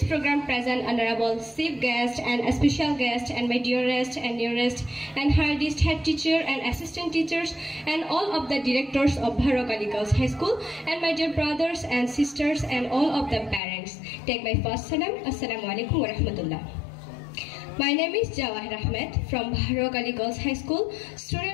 program present Honorable Chief Guest and a special guest and my dearest and nearest and hardest head teacher and assistant teachers and all of the directors of Bharok Ali Girls High School and my dear brothers and sisters and all of the parents. Take my first salam. Assalamu alaikum wa rahmatullah. My name is Jawahir Ahmed from Bharok Ali Girls High School,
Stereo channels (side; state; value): right; drops out; at 13.6 s